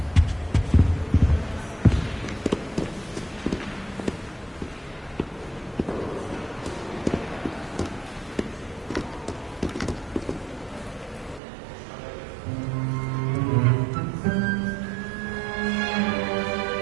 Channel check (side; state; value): left; drops out; at 11.4 s